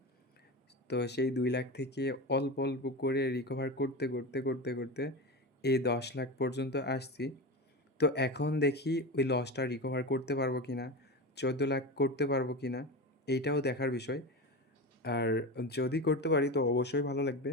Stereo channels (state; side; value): normal; both; correlation 0.23